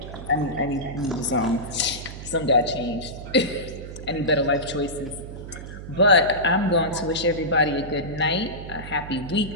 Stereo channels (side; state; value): right; noise; hum, 11 dB below the sound